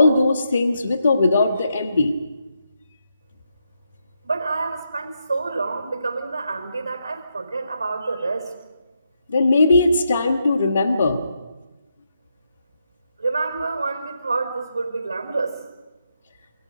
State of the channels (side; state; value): both; inverted; correlation -0.81